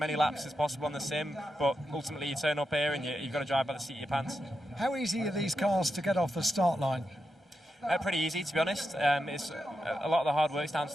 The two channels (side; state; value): both; normal; correlation 0.87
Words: laps as possible on the sim, but ultimately you turn up here and you've got to drive by the seat of your pants. How easy are these cars to get off the start line? Pretty easy, to be honest. It's a lot of the hard work's down to